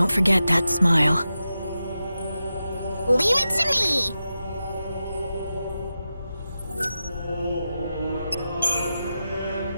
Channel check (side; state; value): both; inverted; correlation -0.91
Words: forget that smile. Leave it to me!